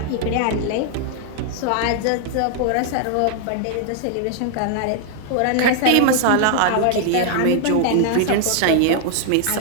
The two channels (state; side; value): different; both; correlation 0.00